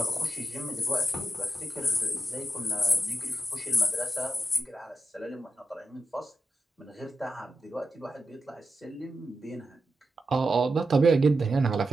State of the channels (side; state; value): both; normal; correlation 0.88